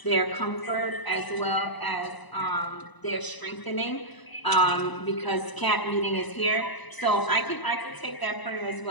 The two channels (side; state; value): right; late; 1.0 ms